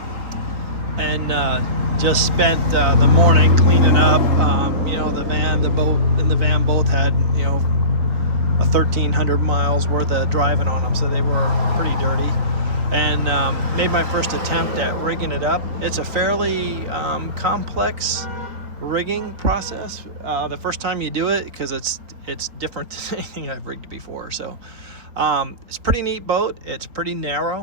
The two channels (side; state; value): left; late; 3.6 ms